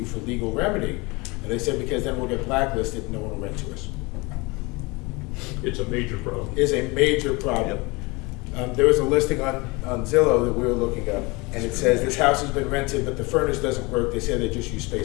for legal remedy? And they said, because then we'll get blacklisted and no one will rent to us. It's a major problem. Is a major problem. There was a listing on Zillow that we were looking up, and it says this house has been rented, but the furnace doesn't work. They say they just use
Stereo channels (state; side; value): quieter; right; 25.6 dB